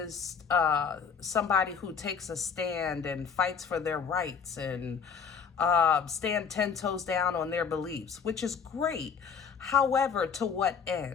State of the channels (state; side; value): quieter; right; 6.4 dB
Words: somebody who takes a stand and fights for their rights and stand 10 toes down on their beliefs, which is great. However, to what